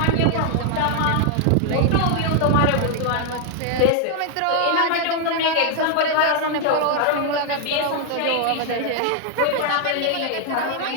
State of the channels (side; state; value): both; different; correlation 0.00